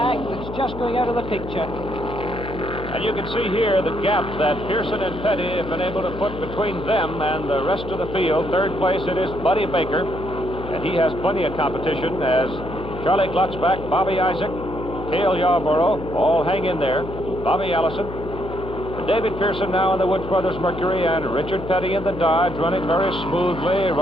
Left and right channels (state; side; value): noise; left; hum, 10 dB below the sound